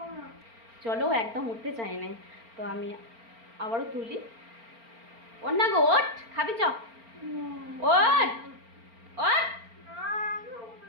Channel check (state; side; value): late; left; 4.4 ms